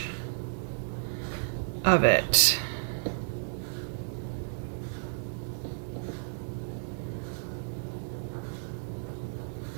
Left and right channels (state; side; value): silent; left; digital silence